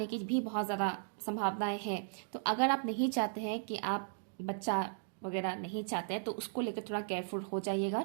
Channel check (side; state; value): left; silent; digital silence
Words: की भी बहुत ज़्यादा संभावनाएं हैं। तो अगर आप नहीं चाहते हैं कि आप बच्चा वगैरह नहीं चाहते हैं तो उसको लेकर थोड़ा केयरफुल हो जाइएगा